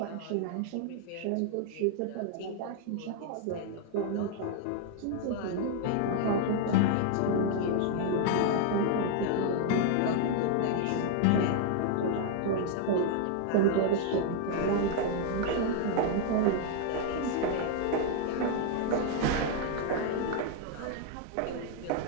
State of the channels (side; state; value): both; different; correlation 0.00